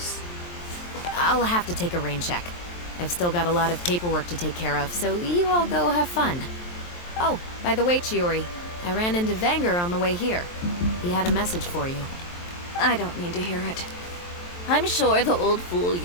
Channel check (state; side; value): late; right; 23 ms